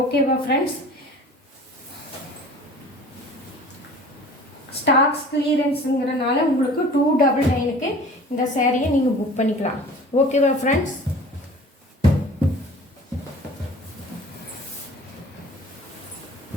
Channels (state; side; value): normal; both; correlation 0.45